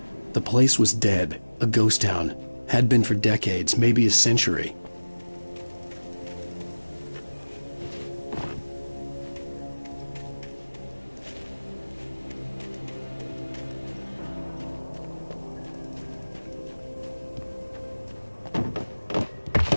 The place was dead, a ghost town. Had been for decades, maybe a century.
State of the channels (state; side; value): inverted; both; correlation -1.00